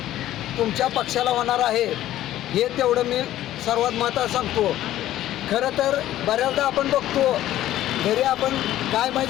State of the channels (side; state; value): right; quieter; 13.6 dB